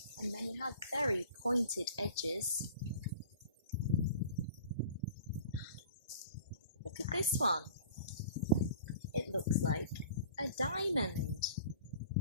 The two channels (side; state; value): both; inverted; correlation -0.45